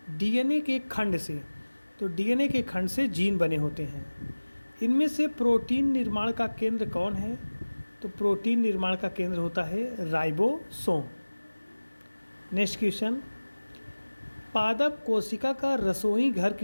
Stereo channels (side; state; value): both; inverted; correlation -1.00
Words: DNA के खंड से। तो DNA के खंड से जीन बने होते हैं। इनमें से प्रोटीन निर्माण का केंद्र कौन है? तो प्रोटीन निर्माण का केंद्र होता है राइबोसोम। नेक्स्ट क्वेश्चन, पादप कोशिका का रसोई घर